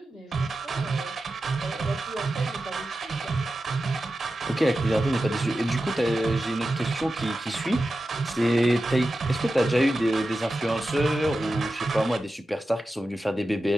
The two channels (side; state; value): both; normal; correlation 0.92